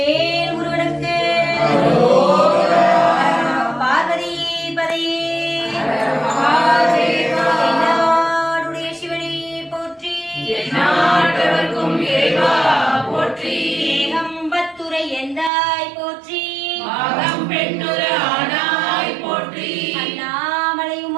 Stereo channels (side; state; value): left; drops out; at 15.5 s